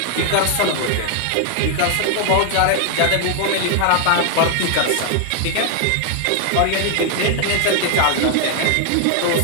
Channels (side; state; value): both; different; correlation 0.00